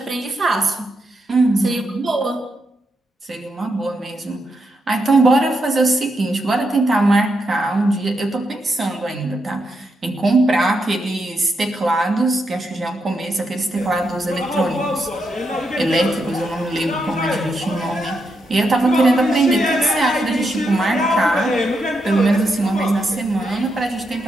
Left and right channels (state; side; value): normal; both; correlation 0.82